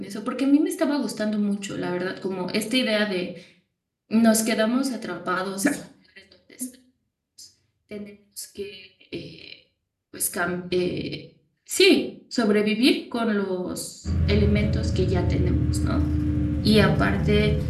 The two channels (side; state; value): both; identical; correlation 1.00